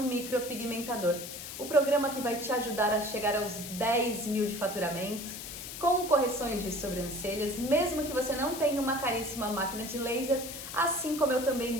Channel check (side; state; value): left; noise; hiss, 9 dB below the sound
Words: Micropigmentador. O programa que vai te ajudar a chegar aos 10 mil de faturamento, com correções de sobrancelhas, mesmo que você não tenha uma caríssima máquina de laser, assim como eu